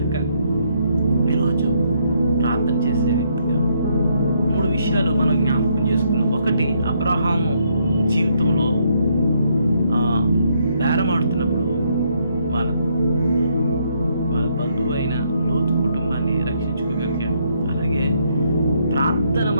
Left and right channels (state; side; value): inverted; both; correlation -0.73